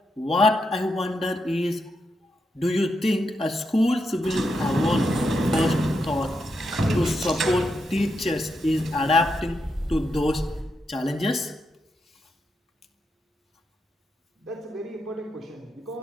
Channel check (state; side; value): normal; both; correlation 0.83